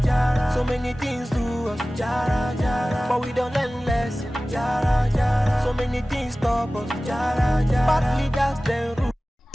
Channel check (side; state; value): both; normal; correlation 0.97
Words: jara. So many things to us, jara, jara. But we don't learn lesson, jara, jara. So many things stop us, jara, jara. Partly that's the root.